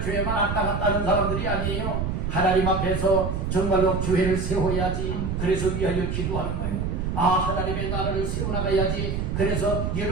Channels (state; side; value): noise; right; rumble, 1 dB below the sound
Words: 왔다 갔다 하는 사람들이 아니에요. 하나님 앞에서 정말로 교회를 세워야지, 그래서 위하여 기도하는 거예요. 하나님의 나라를 세워나가야지, 그래서